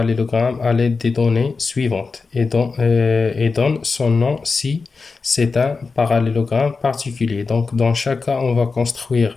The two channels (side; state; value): right; quieter; 4.4 dB